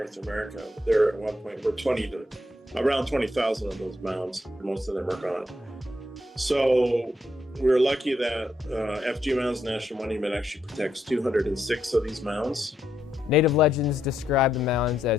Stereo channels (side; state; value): both; normal; correlation 0.79